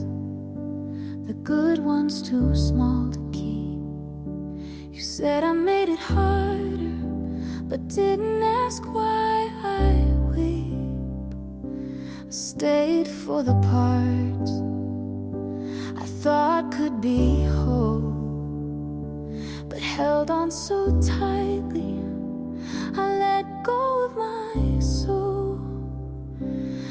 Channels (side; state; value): both; identical; correlation 1.00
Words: the good ones too small to keep. You said I made it harder, but didn't ask why I weep. I stayed for the parts I thought could be whole, but held on so tightly I let go of my soul.